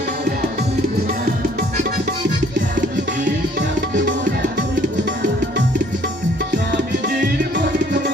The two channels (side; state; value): both; normal; correlation 0.58